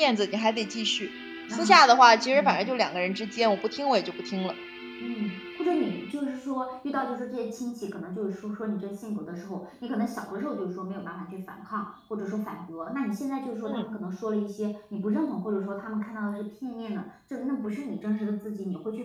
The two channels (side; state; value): both; identical; correlation 1.00